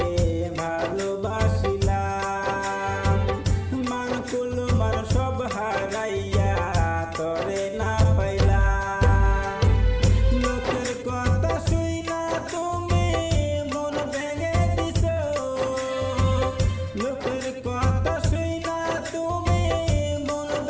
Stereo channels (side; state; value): both; identical; correlation 1.00